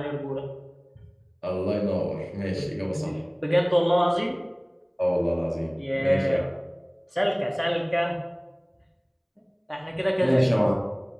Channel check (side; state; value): both; identical; correlation 1.00